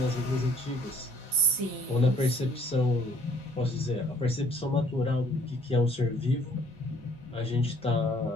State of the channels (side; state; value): both; normal; correlation 0.59